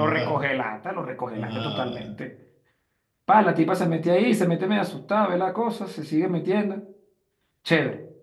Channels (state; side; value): identical; both; correlation 1.00